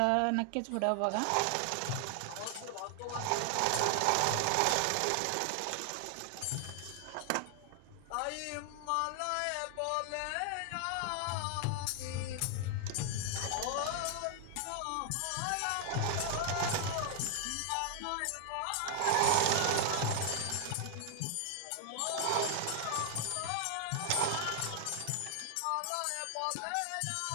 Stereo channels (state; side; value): different; both; correlation 0.00